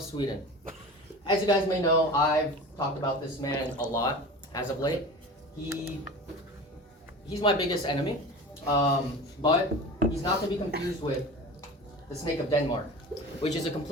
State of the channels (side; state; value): both; normal; correlation 0.35